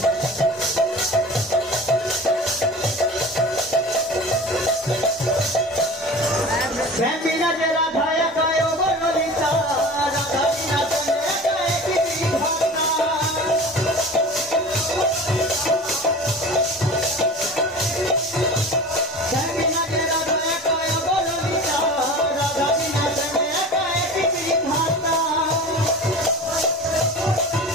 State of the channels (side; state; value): both; normal; correlation 0.36